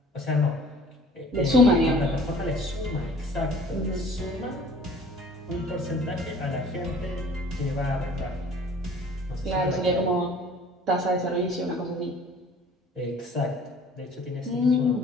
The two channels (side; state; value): both; normal; correlation 0.50